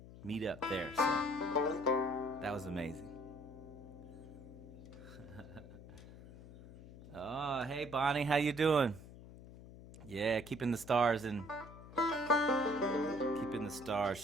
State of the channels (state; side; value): noise; left; hum, 16 dB below the sound